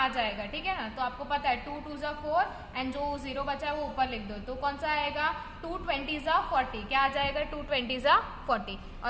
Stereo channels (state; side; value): identical; both; correlation 1.00